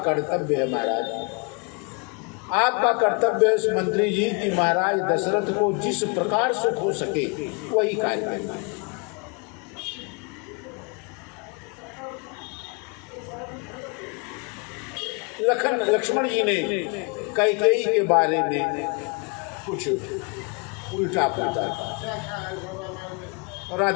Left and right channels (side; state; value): right; quieter; 32.9 dB